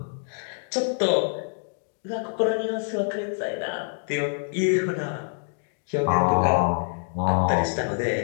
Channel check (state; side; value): silent; right; digital silence